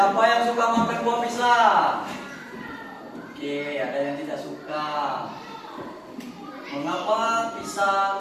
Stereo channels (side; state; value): both; identical; correlation 1.00